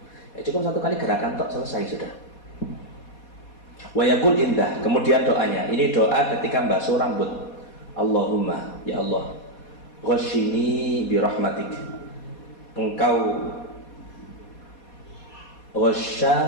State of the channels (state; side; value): late; right; 4.2 ms